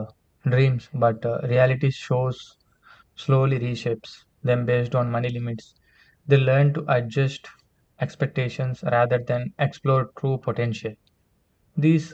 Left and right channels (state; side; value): identical; both; correlation 1.00